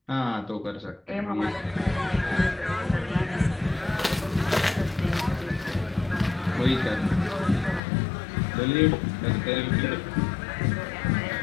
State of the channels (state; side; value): drops out; right; at 7.8 s